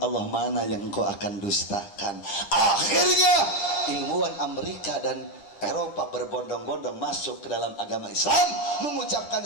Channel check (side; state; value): right; late; 10 ms